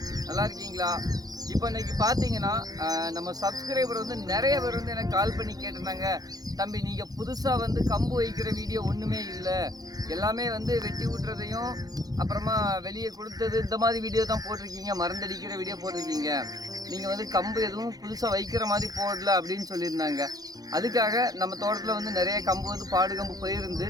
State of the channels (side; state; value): left; late; 0.18 ms